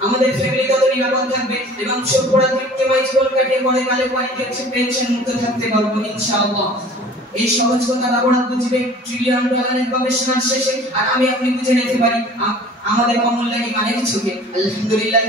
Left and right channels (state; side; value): normal; both; correlation 0.46